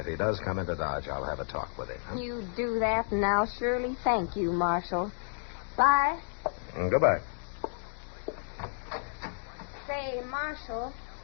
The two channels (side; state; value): right; silent; digital silence